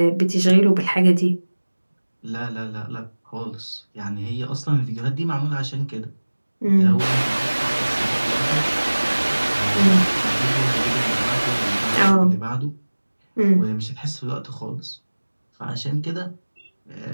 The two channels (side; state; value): both; inverted; correlation -1.00